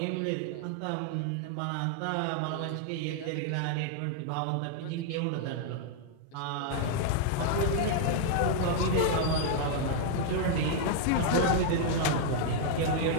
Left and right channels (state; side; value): different; both; correlation 0.00